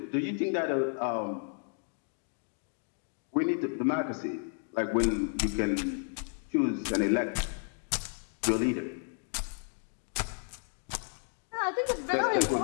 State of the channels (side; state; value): right; silent; 56 dB below the other